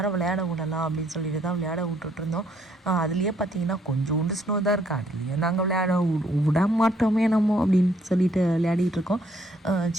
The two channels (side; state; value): both; normal; correlation 0.68